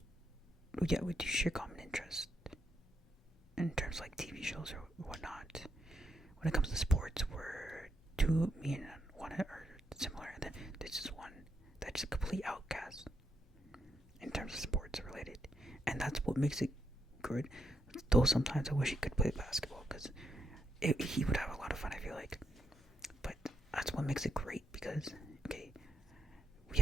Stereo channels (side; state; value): both; normal; correlation 0.80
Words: Yeah, we do share common interest in terms of like TV shows or whatnot. When it comes to sports, me and one are similar, and then there's just one that's a complete outcast in terms of sports related, and that's what makes it good. Though sometimes I wish he could play basketball because he would have a lot of fun, I feel like. But that's what makes it great, because we